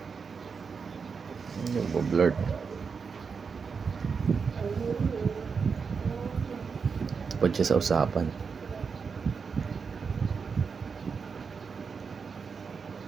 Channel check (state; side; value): quieter; left; 5.6 dB